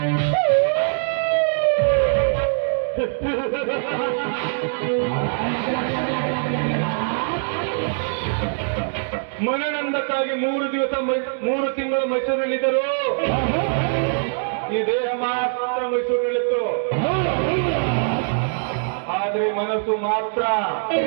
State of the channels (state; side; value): silent; left; 64 dB below the other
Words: ಮನನಂದಕ್ಕಾಗಿ 3 ದಿವಸ 3 ತಿಂಗಳು ಮೈಸೂರಿನಲ್ಲಿದ್ದರು. ಈ ದೇಹ ಮಾತ್ರ ಮೈಸೂರಿನಲ್ಲಿತ್ತು, ಆದ್ರೆ ಮನಸ್ಸು ಮಾತ್ರ